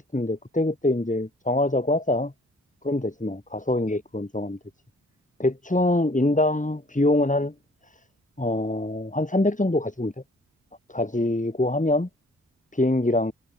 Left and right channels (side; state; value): both; normal; correlation 0.56